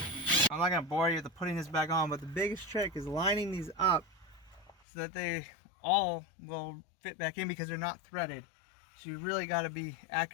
I'm not gonna bore you with putting this back on, but the biggest trick is lining these up so that they all will fit back in because they're not threaded. So you really got to be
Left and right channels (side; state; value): right; drops out; at 4.8 s